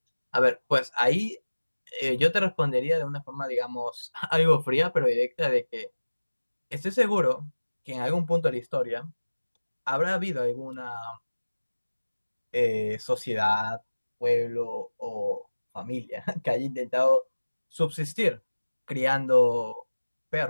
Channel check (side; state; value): both; inverted; correlation -1.00